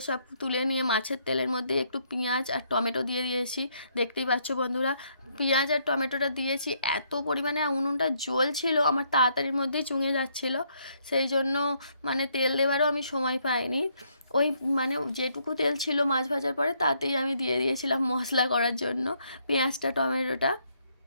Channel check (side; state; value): both; inverted; correlation -0.72